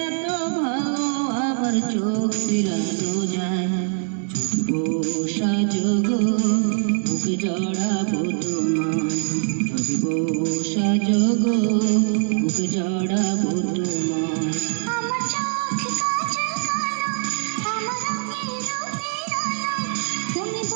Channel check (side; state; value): left; silent; 56 dB below the other